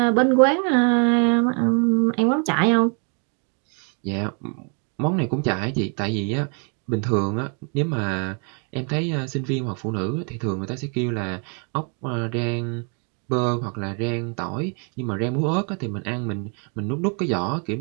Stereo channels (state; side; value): quieter; left; 38.8 dB